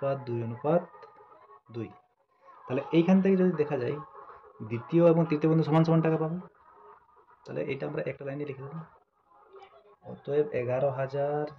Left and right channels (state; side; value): identical; both; correlation 1.00